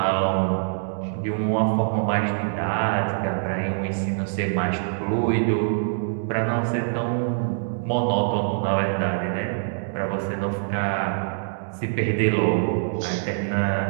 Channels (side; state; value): left; silent; digital silence